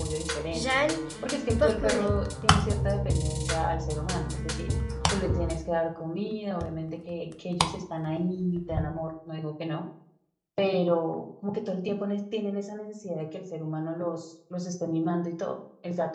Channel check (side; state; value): both; identical; correlation 1.00